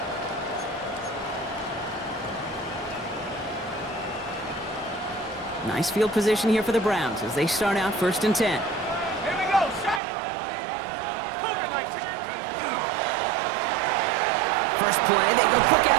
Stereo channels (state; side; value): drops out; left; at 10.0 s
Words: Nice field position here for the Browns as they start out 1st and 10. Here we go, set. First play, they go quick